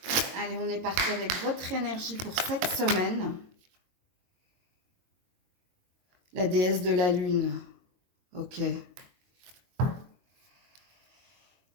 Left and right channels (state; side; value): late; left; 22 ms